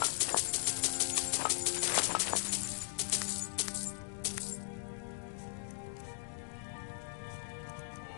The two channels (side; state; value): right; silent; digital silence